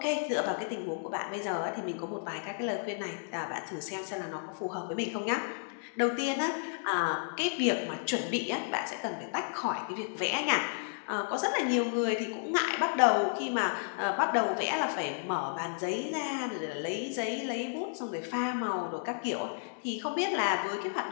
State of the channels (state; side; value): silent; right; digital silence